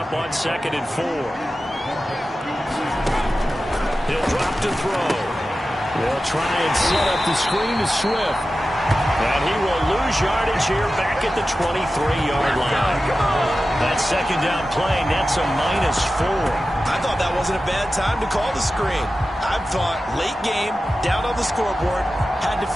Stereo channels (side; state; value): both; normal; correlation 0.94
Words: on 2nd and 4. He'll drop to throw. They'll try and set up the screen to Swift. And he will lose yardage here back at the 23-yard line. That second down play, that's a -4. I thought that wasn't a bad time to call the screen. I thought late game, down on the scoreboard, had to